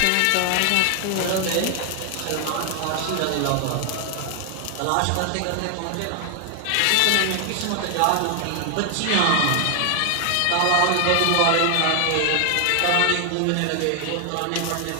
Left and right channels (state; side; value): different; both; correlation 0.00